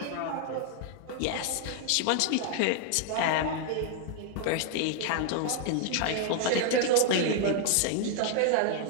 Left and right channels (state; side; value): different; both; correlation 0.00